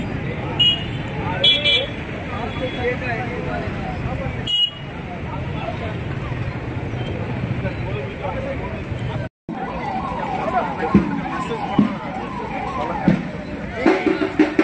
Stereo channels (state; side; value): identical; both; correlation 1.00